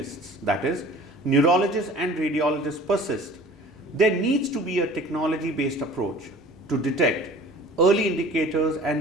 that is, neurologists and radiologists persist, there needs to be a technology-based approach to detect early indicators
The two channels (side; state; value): both; normal; correlation 0.46